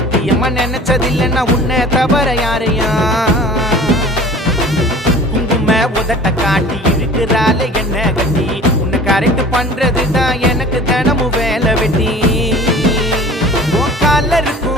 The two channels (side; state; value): both; normal; correlation 0.43